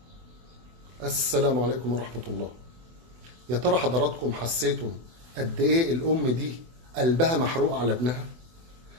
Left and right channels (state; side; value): late; left; 24 ms